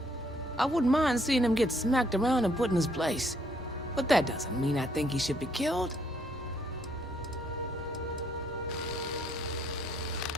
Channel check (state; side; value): normal; both; correlation 0.69